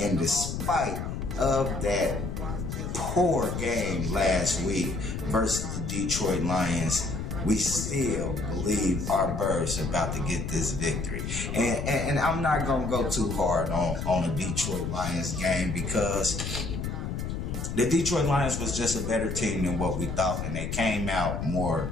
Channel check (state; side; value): noise; left; rumble, 4 dB below the sound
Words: despite of that poor game last week versus the Detroit Lions, we still believe our Birds are about to get this victory. And I'm not going to go too hard on the Detroit Lions game, because the Detroit Lions was just a better team than what we thought, and they came out